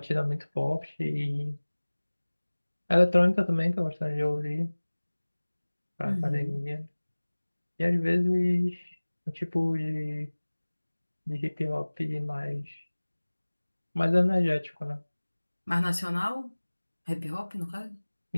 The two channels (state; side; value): inverted; both; correlation -1.00